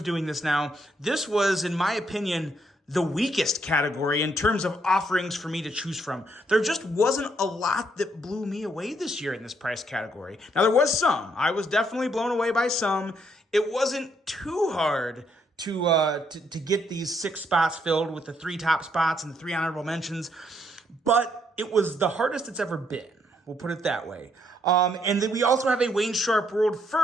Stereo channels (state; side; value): normal; both; correlation 0.72